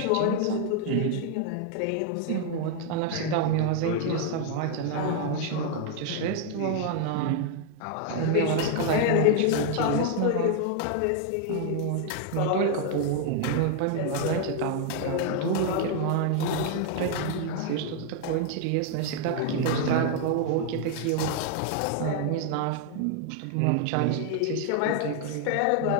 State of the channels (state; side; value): different; both; correlation 0.00